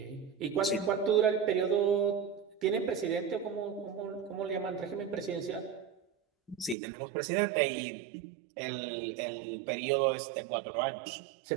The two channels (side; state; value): left; drops out; at 6.8 s